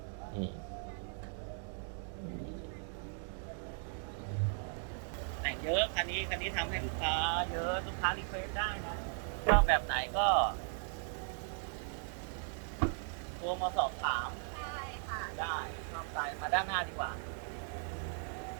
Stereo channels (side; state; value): left; silent; 53 dB below the other